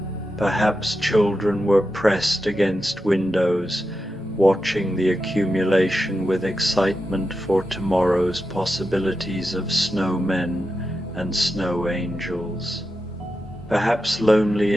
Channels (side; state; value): both; normal; correlation 0.89